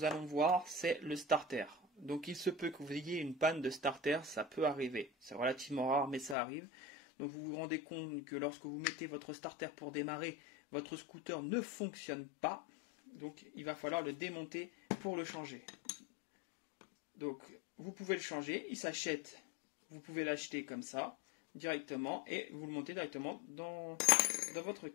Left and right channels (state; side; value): drops out; right; at 6.4 s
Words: allons voir, c'est le starter. Donc il se peut que vous ayez une panne de starter, ça peut arriver. C'est relativement rare, mais ça arrive. Donc vous vous rendez compte que lorsque vous mettez votre starter pour démarrer, votre scooter ne fonctionne pas. Donc il va falloir le démonter pour le changer. Donc vous pouvez le changer, il s'achète. Vous pouvez l'acheter comme ça, directement, et vous le montez directement dans votre